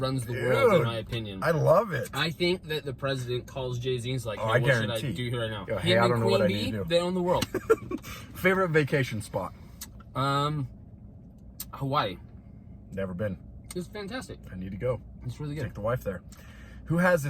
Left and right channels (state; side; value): identical; both; correlation 1.00